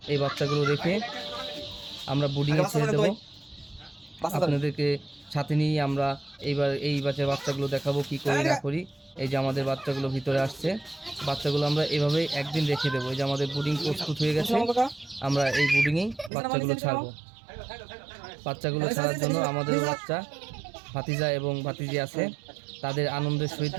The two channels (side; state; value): left; drops out; at 16.3 s